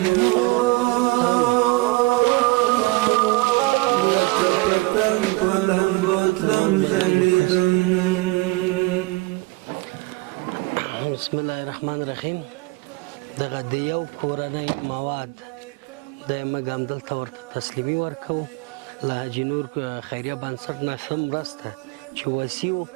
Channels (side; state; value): left; quieter; 23.5 dB